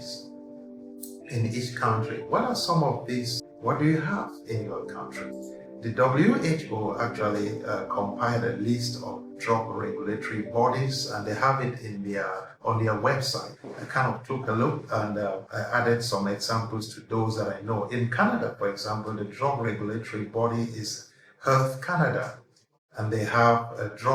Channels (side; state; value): both; identical; correlation 1.00